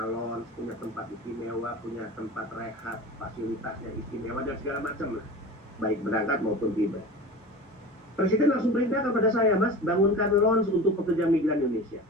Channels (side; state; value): both; normal; correlation 0.34